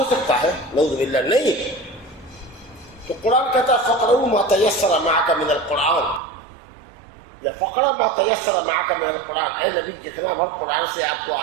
سکتا ہے؟ نعوذ باللہ، نہیں۔ تو قرآن کہتا ہے فقرؤ ما تیسر معک من القرآن، یا فقرہ ما تیسر معک من القرآن، اے نبی جتنا بھر قرآن سے آپ کو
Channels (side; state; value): left; drops out; at 6.2 s